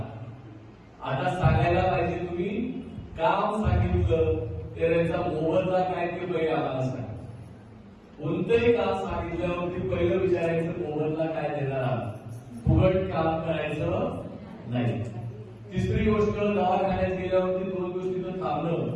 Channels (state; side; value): identical; both; correlation 1.00